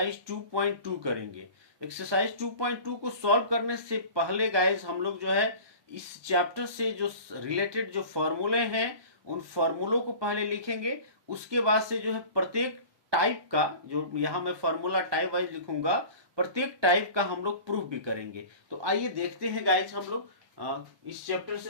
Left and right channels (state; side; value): late; left; 1.2 ms